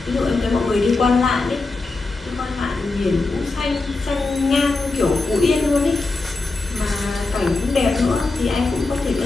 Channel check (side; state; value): right; quieter; 3.5 dB